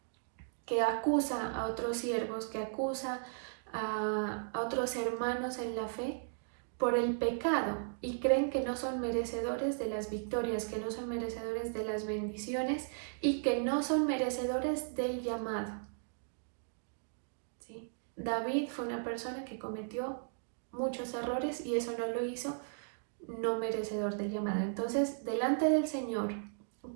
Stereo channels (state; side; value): silent; left; digital silence